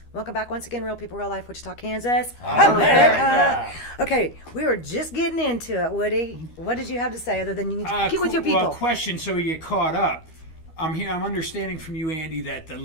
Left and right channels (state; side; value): late; right; 13 ms